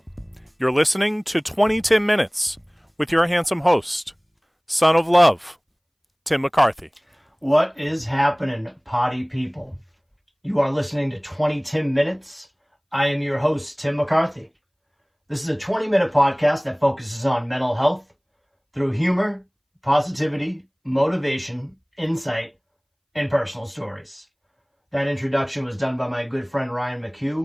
You're listening to 20TIMinutes with your handsome host, son of love, Tim McCarthy. What is happening, potty people? You are listening to 20TIMinutes. I am your host, Tim McCarthy. This is a 20-minute podcast that focuses on mental health through humor, positivity, motivation, insight, and personal stories. That introduction was done by my good friend Ryan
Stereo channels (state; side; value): identical; both; correlation 1.00